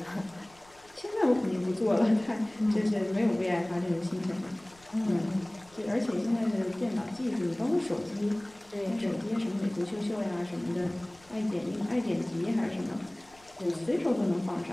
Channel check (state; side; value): noise; left; rumble, 28 dB below the sound